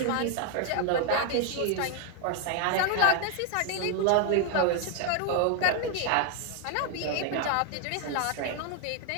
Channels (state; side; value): different; both; correlation 0.01